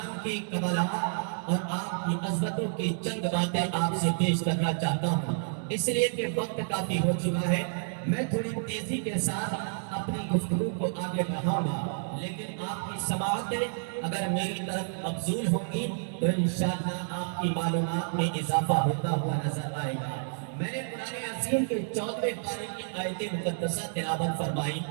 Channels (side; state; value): left; silent; digital silence